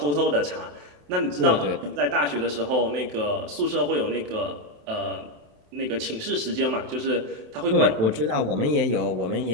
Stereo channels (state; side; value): late; left; 27 ms